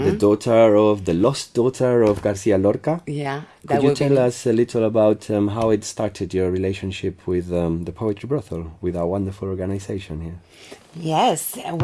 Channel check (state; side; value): identical; both; correlation 1.00